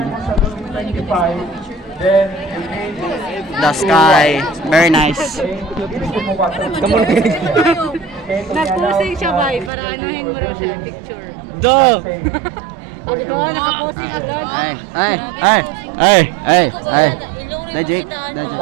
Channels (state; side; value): drops out; left; at 9.7 s